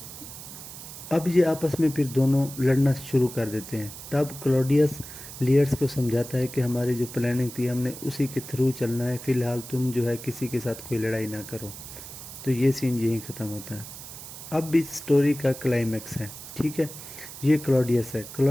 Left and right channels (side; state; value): right; noise; hiss, 13 dB below the sound